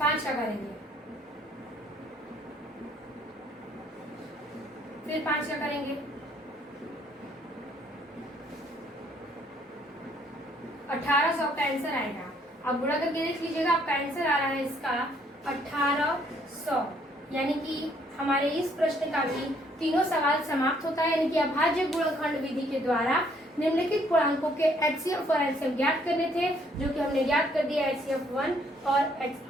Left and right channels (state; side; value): normal; both; correlation 0.66